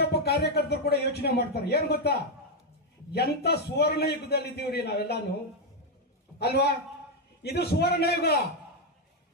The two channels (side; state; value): both; normal; correlation 0.02